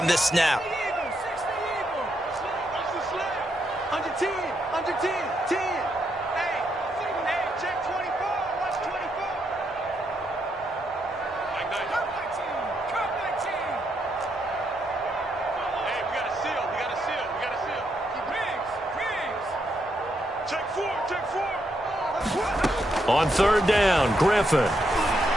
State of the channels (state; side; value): normal; both; correlation 0.79